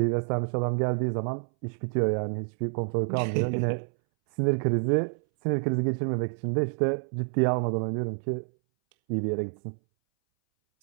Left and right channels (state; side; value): silent; left; 59 dB below the other